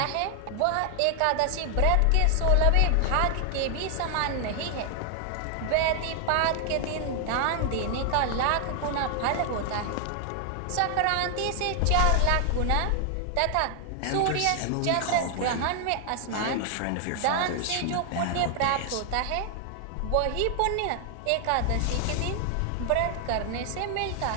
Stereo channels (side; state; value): both; different; correlation 0.00